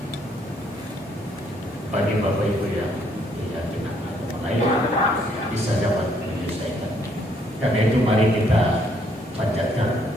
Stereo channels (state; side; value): normal; both; correlation 0.68